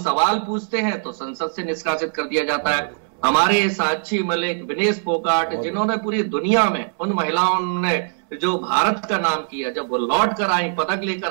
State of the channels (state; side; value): silent; left; 65 dB below the other